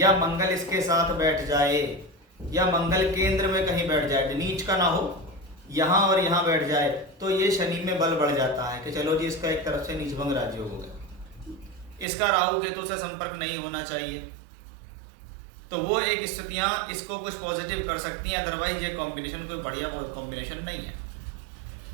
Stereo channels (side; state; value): left; drops out; at 12.1 s